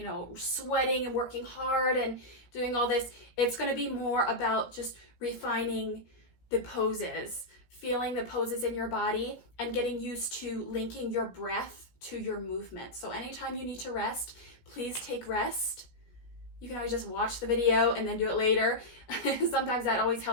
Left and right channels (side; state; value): right; late; 17 ms